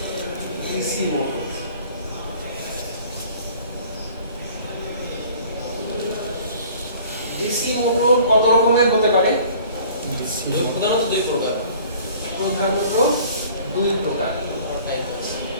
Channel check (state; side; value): inverted; both; correlation -0.50